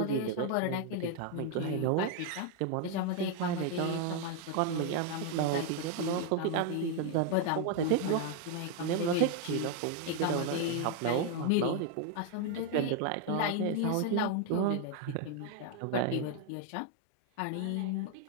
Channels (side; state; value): both; different; correlation 0.01